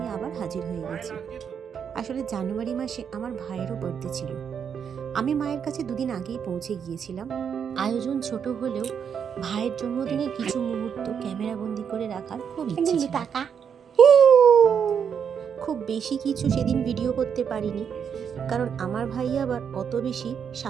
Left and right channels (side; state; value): left; quieter; 7.4 dB